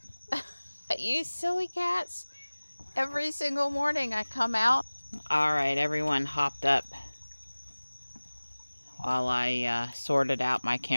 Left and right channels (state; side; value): inverted; both; correlation -1.00